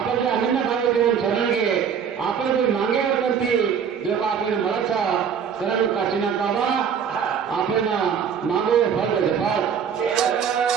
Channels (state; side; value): quieter; left; 7.3 dB